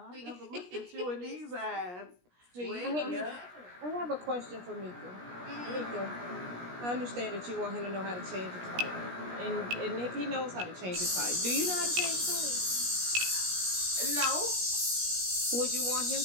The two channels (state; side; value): late; left; 17 ms